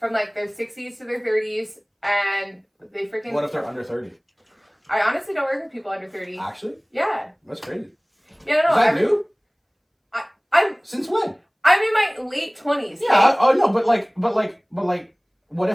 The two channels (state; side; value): identical; both; correlation 1.00